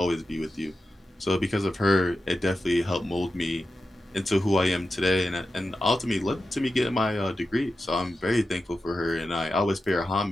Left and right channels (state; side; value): normal; both; correlation 0.91